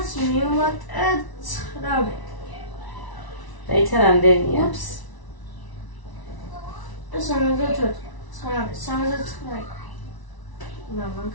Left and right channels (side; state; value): right; late; 1.0 ms